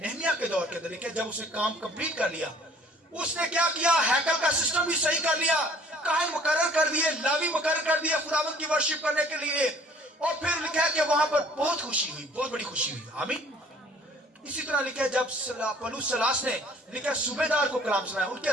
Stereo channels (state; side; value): normal; both; correlation 0.55